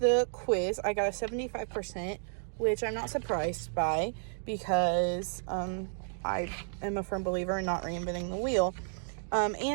quiz. I got a 75%, which I'm not surprised by because I am a firm believer in not reinventing the wheel.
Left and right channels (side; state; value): left; silent; digital silence